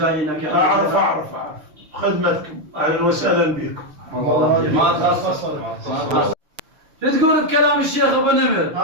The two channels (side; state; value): left; late; 6.6 ms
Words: يا اعرف اعرف خدمتكم اهلا وسهلا بكم. ما تخصص. شو تقول بكلام الشيخ ابو نمر؟